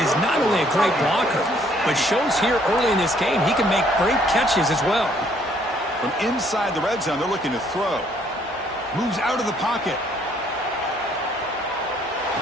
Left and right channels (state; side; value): normal; both; correlation 0.65